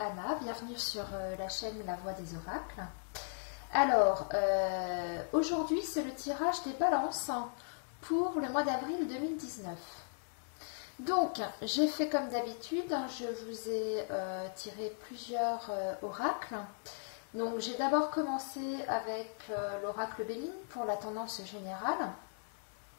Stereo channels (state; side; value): silent; right; digital silence